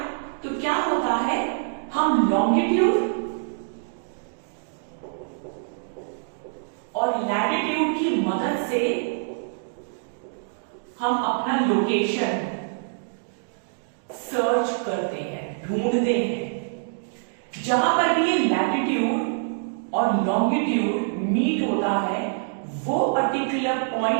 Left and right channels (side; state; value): left; silent; digital silence